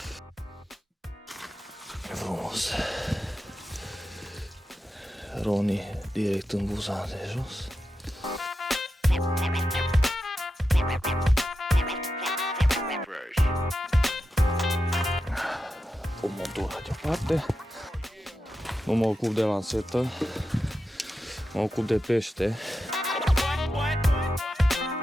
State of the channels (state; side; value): normal; both; correlation 0.90